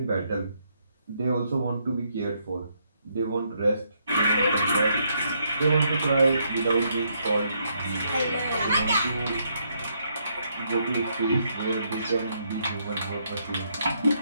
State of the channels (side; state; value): both; inverted; correlation -0.75